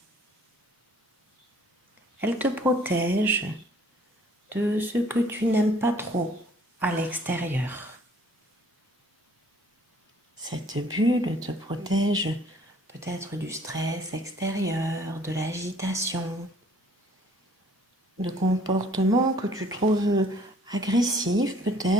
Elle te protège de ce que tu n'aimes pas trop à l'extérieur. Cette bulle te protège peut-être du stress extérieur, de l'agitation, de comportements que tu trouves agressifs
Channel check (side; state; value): both; normal; correlation 0.58